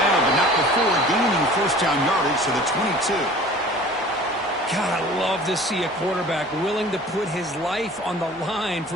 but not before gaining 1st down yardage to the 22. God, I love to see a quarterback willing to put his life on the line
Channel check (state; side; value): normal; both; correlation 0.46